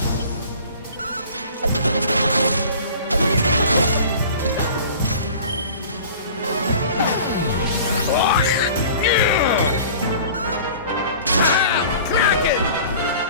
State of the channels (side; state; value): both; inverted; correlation -0.44